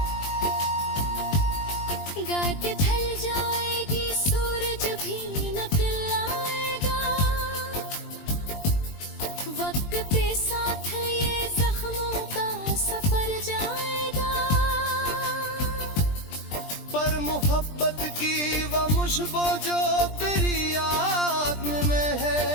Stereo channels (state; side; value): late; right; 20 ms